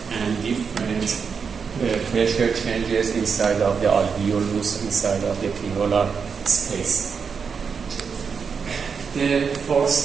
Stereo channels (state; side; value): quieter; left; 6.0 dB